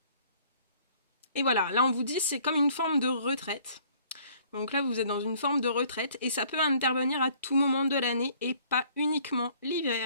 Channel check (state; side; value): inverted; both; correlation -0.58